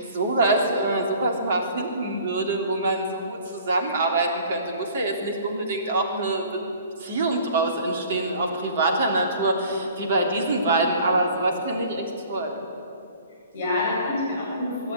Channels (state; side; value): inverted; both; correlation -0.50